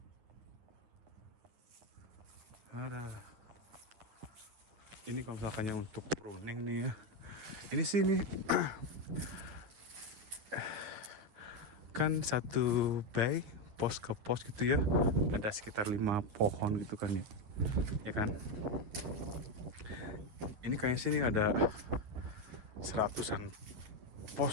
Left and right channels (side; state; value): left; late; 9.8 ms